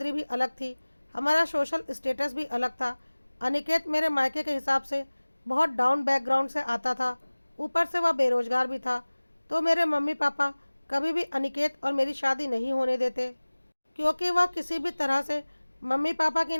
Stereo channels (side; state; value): both; inverted; correlation -1.00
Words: भी अलग थी, हमारा सोशल स्टेटस भी अलग था। अनिकेत मेरे मायके के हिसाब से बहुत डाउन बैकग्राउंड से आता था, ऊपर से वह बेरोजगार भी था। तो मेरे मम्मी पापा कभी भी अनिकेत और मेरी शादी नहीं होने देते, क्योंकि वह किसी भी तरह से मम्मी पापा की